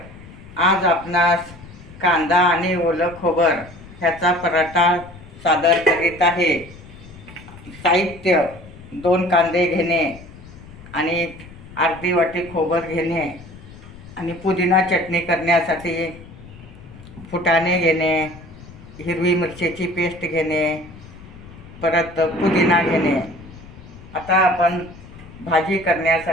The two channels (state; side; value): noise; left; rumble, 18 dB below the sound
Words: आज आपणास कांदा आणि ओलं खोबर ह्याचा पराठा सादर करीत आहे. साहित्य: 2 कांदे घेणे आणि अर्धी वाटी खोबर घेणे आणि पुदिना चटणी करण्यासाठी फुटाणे घेणे, हिरवी मिरचीची पेस्ट घेणे, परत पुदिना घेणे. आता आपण भाजी